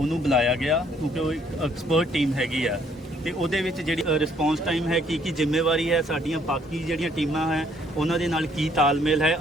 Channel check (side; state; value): both; normal; correlation 0.65